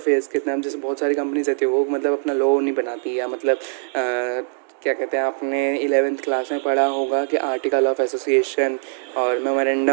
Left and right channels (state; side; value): silent; left; digital silence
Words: के नाम जैसे बहुत सारी कंपनीज रहती है, वो मतलब अपना लॉ नहीं बनाती, या मतलब क्या कहते हैं, आपने 11th क्लास में पढ़ा होगा कि आर्टिकल ऑफ एसोसिएशन और